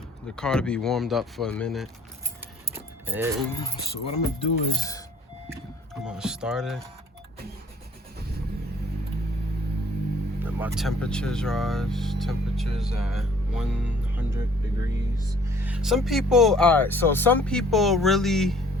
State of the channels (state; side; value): normal; both; correlation 0.57